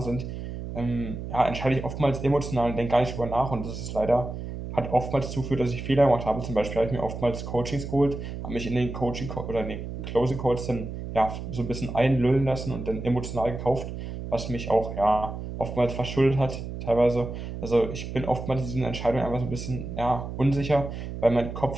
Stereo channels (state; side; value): noise; right; hum, 7 dB below the sound